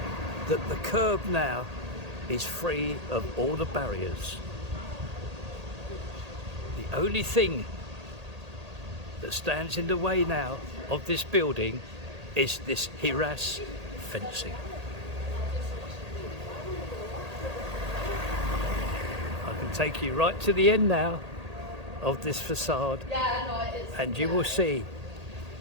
that the curb now is free of all the barriers. The only thing that stands in the way now of this building is this harass fencing. I can take you right to the end now of this facade, and you will see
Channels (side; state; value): left; late; 1.8 ms